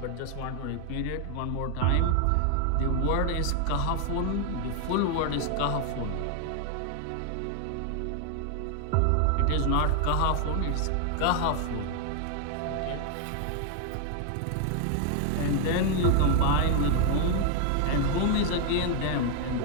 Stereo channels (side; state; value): both; different; correlation 0.00